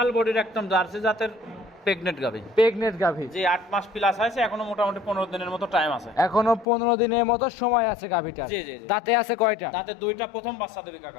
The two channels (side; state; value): right; drops out; at 6.7 s